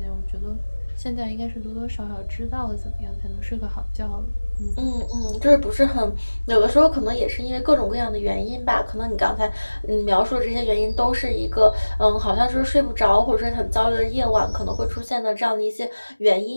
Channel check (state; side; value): inverted; both; correlation -1.00